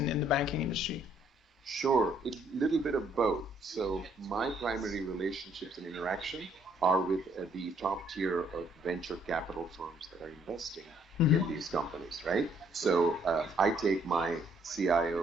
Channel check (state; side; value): normal; both; correlation 0.66